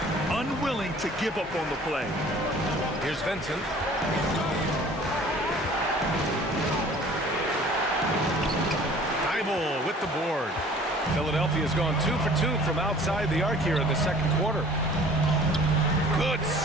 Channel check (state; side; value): normal; both; correlation 0.49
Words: Unwilling to give up on the play. Here's Vincent. Thibault with the board. Philadelphia's gone 2 for 2 from outside the arc here in the second quarter. Good